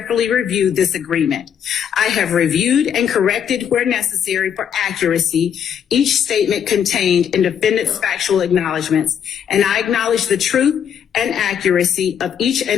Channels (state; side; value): quieter; right; 8.4 dB